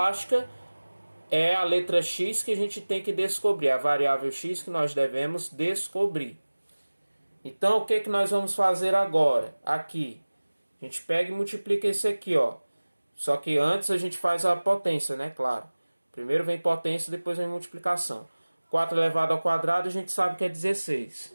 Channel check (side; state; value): both; inverted; correlation -1.00